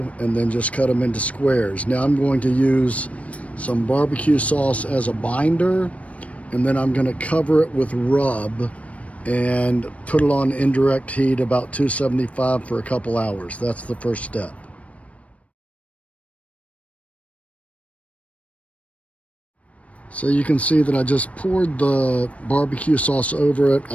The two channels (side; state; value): right; late; 0.065 ms